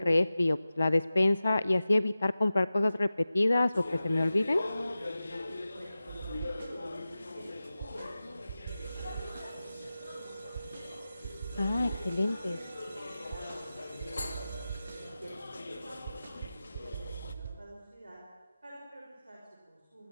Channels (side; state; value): both; inverted; correlation -0.95